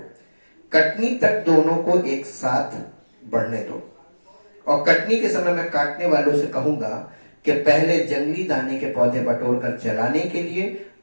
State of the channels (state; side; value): inverted; both; correlation -1.00